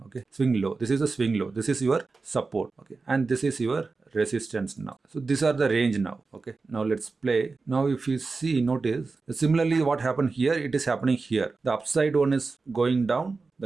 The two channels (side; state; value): left; quieter; 4.1 dB